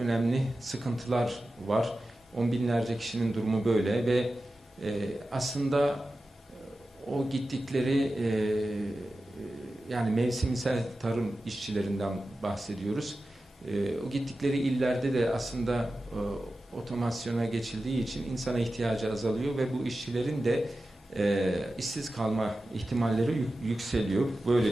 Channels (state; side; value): normal; both; correlation 0.93